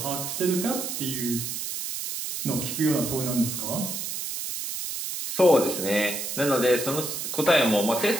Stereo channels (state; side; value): noise; right; hiss, 5 dB below the sound